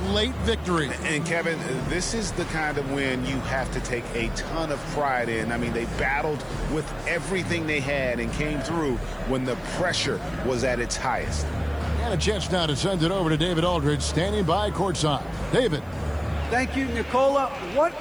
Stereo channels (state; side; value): noise; right; hiss, 29 dB below the sound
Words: late victory. And Kevin, this is the kind of win you have to take a ton of pride in. I mean, they battled with everything they had and came through when the pressure was at its highest. And a chance now to send it over to David Aldridge, standing by courtside. David. Thank you, Nicola. What